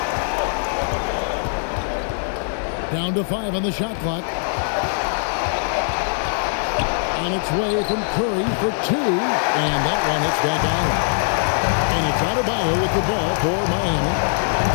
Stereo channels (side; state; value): right; silent; 65 dB below the other